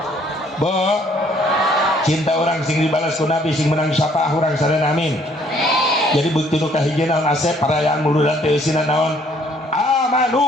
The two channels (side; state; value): both; normal; correlation 0.63